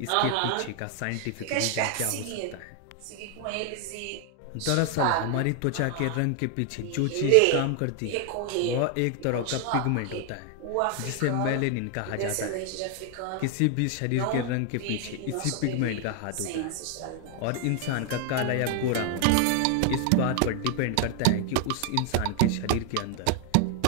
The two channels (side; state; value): both; different; correlation 0.00